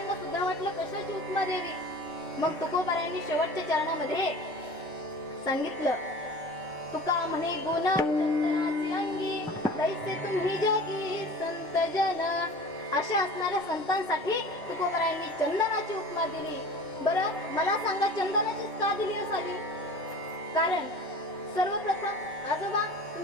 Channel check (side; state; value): both; normal; correlation 0.40